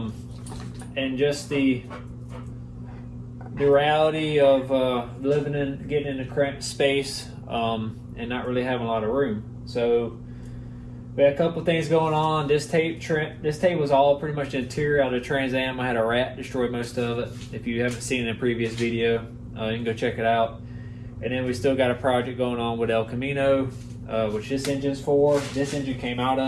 just the reality of getting in a cramped space and not really having a lot of room. So we had a couple things going on. This tape was all pretty much the interior out of the Trans Am. I had a rat destroy most of it. If you haven't seen it in a previous video, you can go check it out. And then we still got a project going on with El Camino, which this engine's for. This engine came out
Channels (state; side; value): identical; both; correlation 1.00